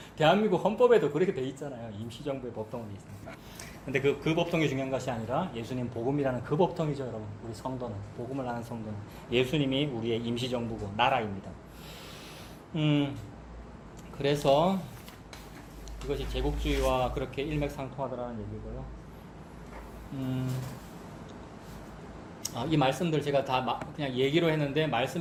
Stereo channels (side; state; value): both; identical; correlation 1.00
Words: 대한민국 헌법에도 그렇게 돼 있잖아요. 임시정부의 법통이 있습니다. 근데 그 법통이 중요한 것이 아니라 예수님 복음이라는 그 법통이죠, 여러분. 우리 성도는, 복음을 아는 성도는 예수님이 우리의 임시정부고 나라입니다. 그래서 이것이 제국주의와 그렇게 일맥상통하더라는 얘기고요. 이 말씀들 제가 다 그냥 얘기로 했는데